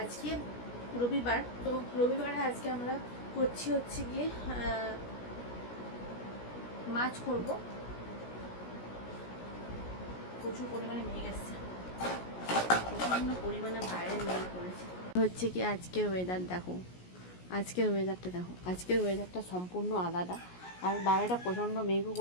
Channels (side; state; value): right; late; 17 ms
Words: রবিবার, তো রবিবারে আজকে আমরা করছি হচ্ছে গিয়ে মাছ করব। প্রচুর পরিমাণে মেঘ এসছে, প্রচণ্ড পরিমাণে বাইরে মেঘ পড়েছে। হচ্ছে কি আজকের ওয়েদার দেখো, আজকের ওয়েদারটা সম্পূর্ণ আলাদা। আর বাইরেটা প্রচণ্ড মেঘও